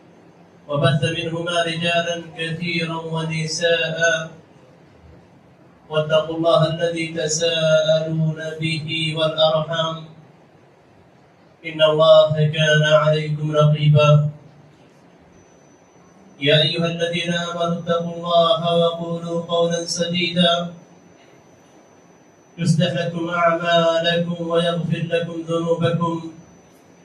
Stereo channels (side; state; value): both; identical; correlation 1.00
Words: وبث منهما رجالا كثيرا ونساء واتقوا الله الذي تساءلون به والأرحام إن الله كان عليكم رقيبا. يا أيها الذين آمنوا اتقوا الله وقولوا قولا سديدا يصلح لكم أعمالكم ويغفر لكم ذنوبكم